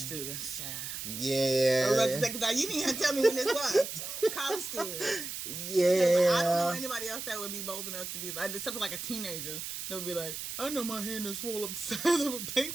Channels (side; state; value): right; noise; hiss, 6 dB below the sound